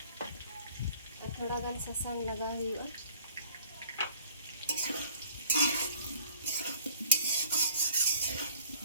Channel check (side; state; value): both; inverted; correlation -0.54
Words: ar thoda gan sasang laga huyua.